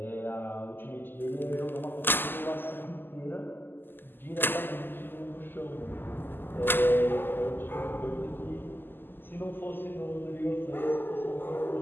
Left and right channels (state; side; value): late; right; 0.095 ms